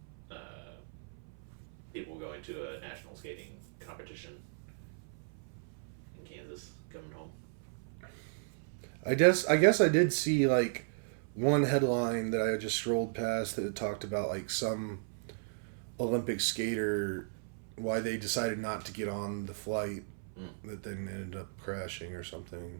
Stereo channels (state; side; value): silent; left; 54 dB below the other